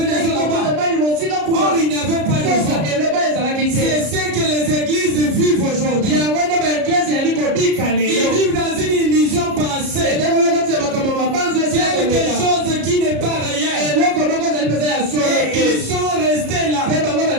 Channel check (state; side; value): late; left; 33 ms